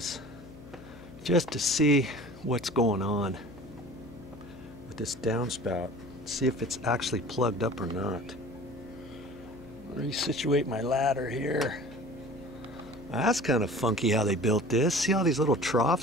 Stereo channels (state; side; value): noise; left; hum, 17 dB below the sound